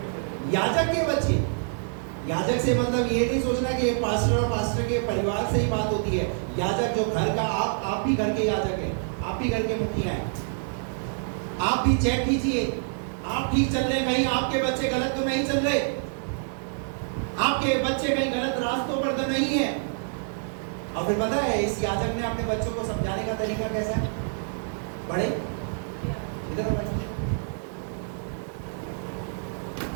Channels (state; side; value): silent; left; digital silence